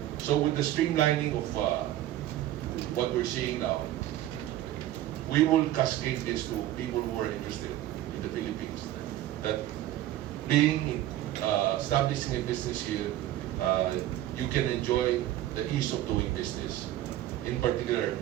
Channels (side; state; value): left; quieter; 13.7 dB